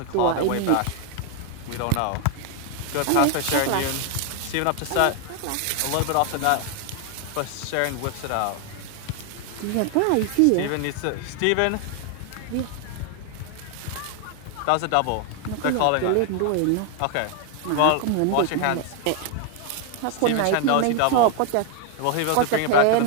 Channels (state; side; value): different; both; correlation 0.00